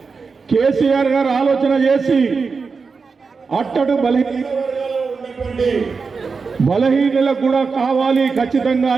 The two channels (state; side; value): quieter; left; 4.9 dB